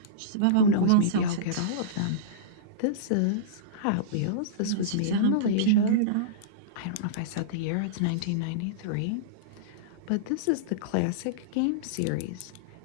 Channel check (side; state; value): both; different; correlation -0.04